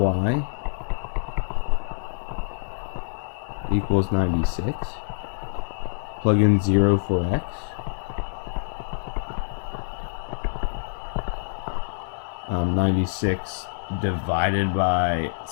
equals 96. Plug in 0 for x. Um, 96 divided by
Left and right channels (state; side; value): silent; right; digital silence